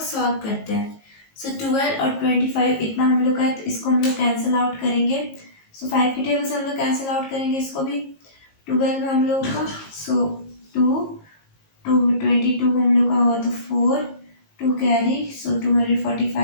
सॉल्व करते हैं। सो 12 और 25 इतना हम लोग का है, तो इसको हम लोग कैंसिल आउट करेंगे। सो 5 की टेबल से हम लोग कैंसिल आउट करेंगे इसको भी। 12 हम लोग का, सो 2 22 हम लोग का हुआ तो 4, 2 कैरी, सो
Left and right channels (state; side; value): late; right; 19 ms